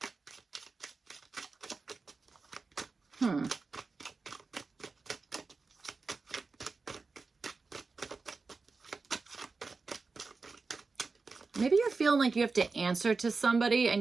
Maybe you're feeling like you have to answer to somebody, and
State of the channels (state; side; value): quieter; left; 4.2 dB